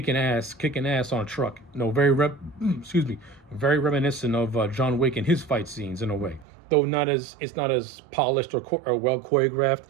ass on a truck. Very reminiscent of John Wick and his fight scenes in a way. Though it's not as polished or well choreographed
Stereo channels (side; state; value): left; drops out; at 6.5 s